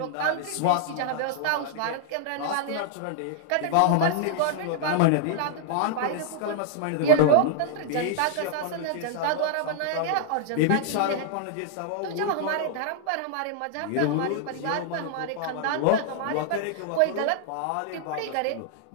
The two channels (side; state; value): both; different; correlation -0.01